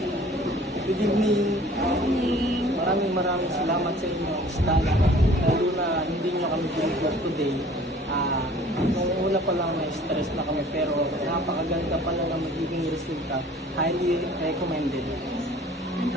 Good evening. Evening. Maraming salamat sa inyo, Stana. Lalo na hindi nyo kami binigyan today. Nung una pa lang na-stress na kami pero napakaganda pala ng magiging resulta. Highly recommended. And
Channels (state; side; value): normal; both; correlation 0.50